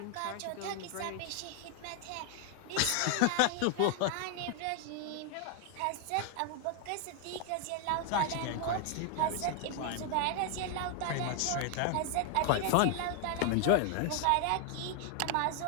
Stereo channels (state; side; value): different; both; correlation 0.00